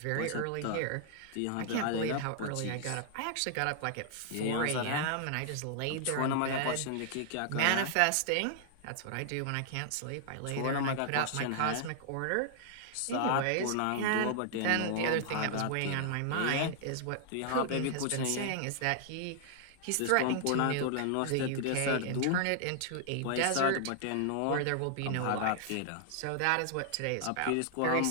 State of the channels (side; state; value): both; different; correlation -0.01